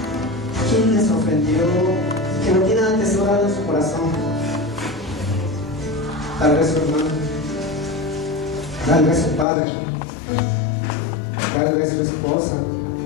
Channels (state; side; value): drops out; right; at 9.5 s